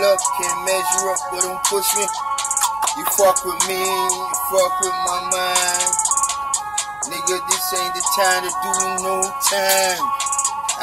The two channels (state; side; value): noise; left; hum, 27 dB below the sound